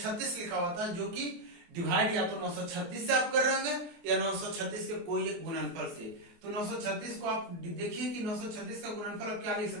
लिखा हुआ था, जो कि डिवाइड या तो 936 से आप कर रहे होंगे या 936 के कोई एक गुणनफल से। तो 936 को आप देखिए कि 936 का गुणनफल आप क्या लिख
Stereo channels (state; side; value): late; left; 24 ms